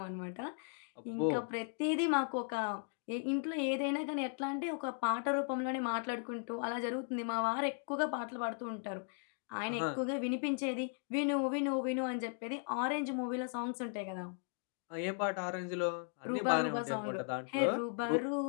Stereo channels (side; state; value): right; silent; 53 dB below the other